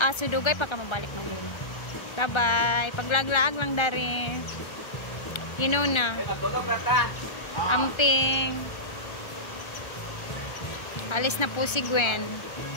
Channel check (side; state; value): right; late; 1.3 ms